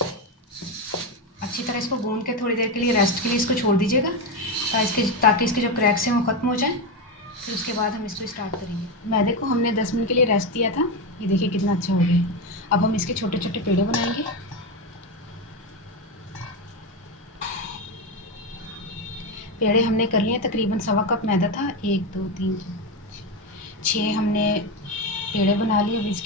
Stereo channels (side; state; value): both; normal; correlation 0.13